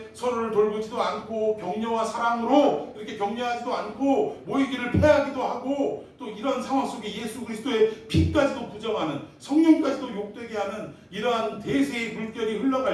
서로를 돌보지도 않고 격려와 사랑으로 이렇게 격려하지도 않고 모이기를 패하기도 하고 또 이런 상황 속에 예수 그리스도의 피까지도 부정하는 성령까지도 욕되게 하는 이러한 대세의 물결이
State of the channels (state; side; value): identical; both; correlation 1.00